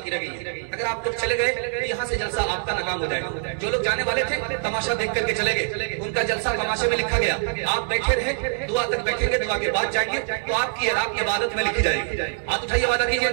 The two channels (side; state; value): left; silent; digital silence